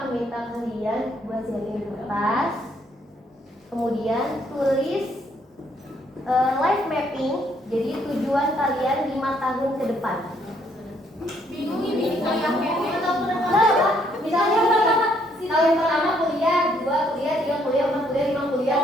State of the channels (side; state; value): both; normal; correlation 0.69